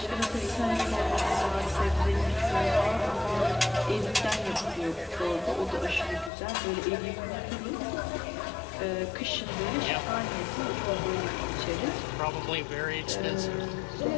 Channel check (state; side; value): drops out; right; at 6.3 s